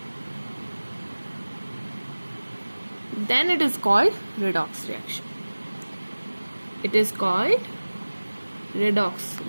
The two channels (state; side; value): inverted; both; correlation -1.00